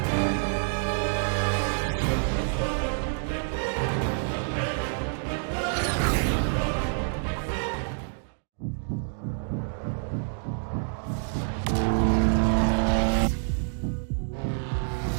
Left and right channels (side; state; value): left; silent; 60 dB below the other